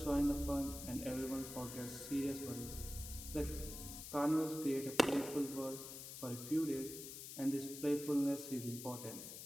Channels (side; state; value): left; noise; hiss, 9 dB below the sound